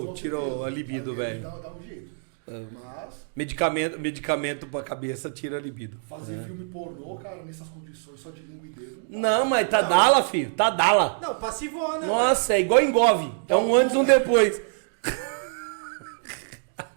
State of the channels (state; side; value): silent; left; digital silence